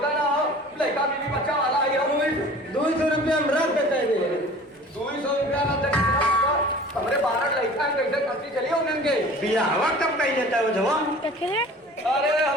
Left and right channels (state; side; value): normal; both; correlation 0.44